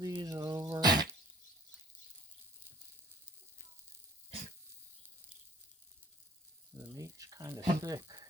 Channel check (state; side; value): normal; both; correlation 0.54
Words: over. The meat's kind of thick.